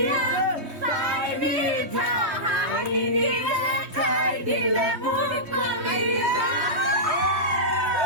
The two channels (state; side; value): late; left; 3.2 ms